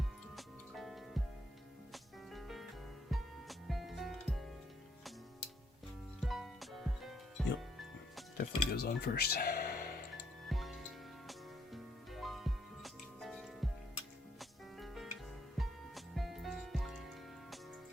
Definitely goes on first.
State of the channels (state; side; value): normal; both; correlation 0.71